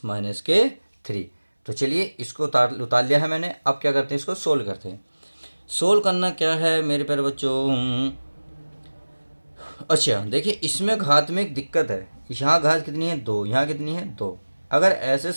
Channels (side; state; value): both; inverted; correlation -1.00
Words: minus के 3। तो चलिए इसको उतार लिया है मैंने। अब क्या करते हैं, इसको सोल्व करते हैं। सोल्व करना क्या है मेरे प्यारे बच्चों, अच्छा देखिए इसमें घात में एक दिक्कत है। यहाँ घात कितनी है 2, यहाँ कितनी है 2। अगर ऐसे